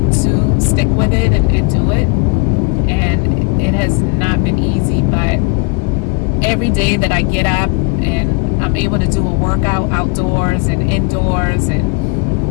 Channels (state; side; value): quieter; right; 31.0 dB